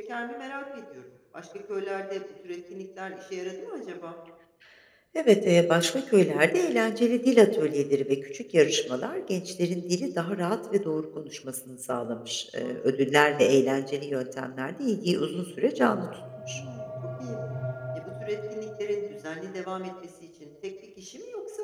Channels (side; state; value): both; identical; correlation 1.00